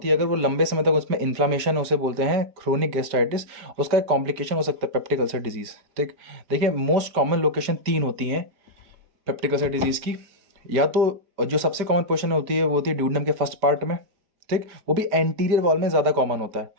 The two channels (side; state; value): left; late; 4.7 ms